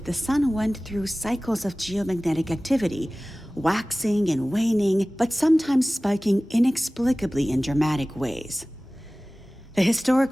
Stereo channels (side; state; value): both; normal; correlation 0.98